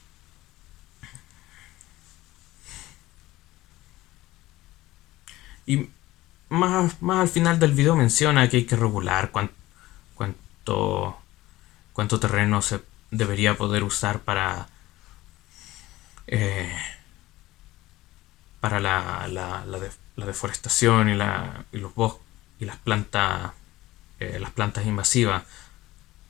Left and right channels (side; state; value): right; quieter; 17.5 dB